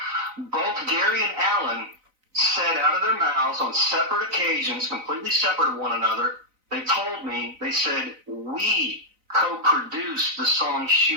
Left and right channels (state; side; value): late; left; 3.9 ms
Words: both Gary and Alan said out of their mouths on separate occasions, completely separate of one another, they told me, they said, we co-produced the song